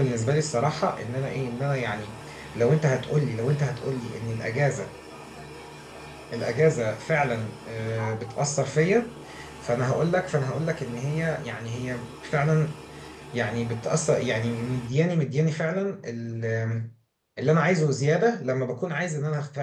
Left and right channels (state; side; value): identical; both; correlation 1.00